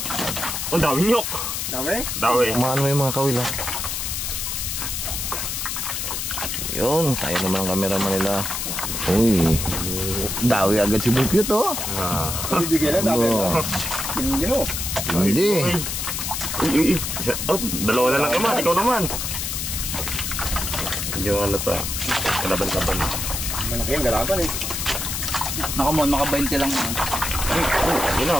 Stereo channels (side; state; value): left; noise; hiss, 3 dB below the sound